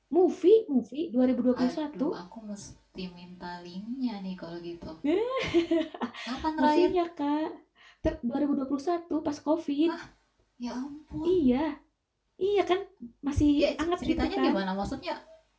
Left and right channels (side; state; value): both; identical; correlation 1.00